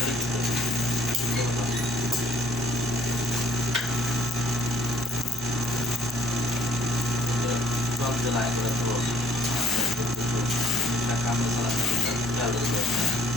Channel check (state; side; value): normal; both; correlation 0.62